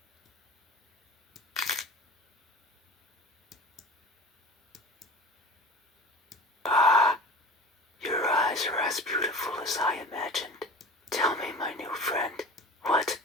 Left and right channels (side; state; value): both; normal; correlation 0.36